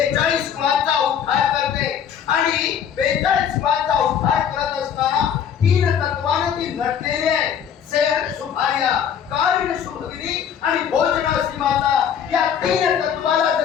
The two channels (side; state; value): right; quieter; 8.4 dB